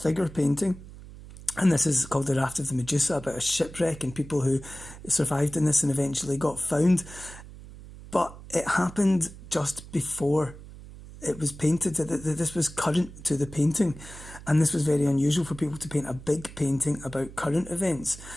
painting. And this is called The Raft of the Medusa, about a shipwreck and people who survived in this and eventually got found. But it happened just before it was painted. This was current to the painting. And this was very unusual for people to paint a big painting about current events.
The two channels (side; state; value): right; noise; hum, 16 dB below the sound